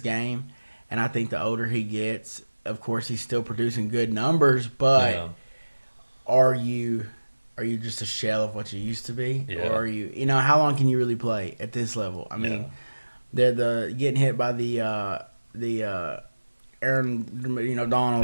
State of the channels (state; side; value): inverted; both; correlation -1.00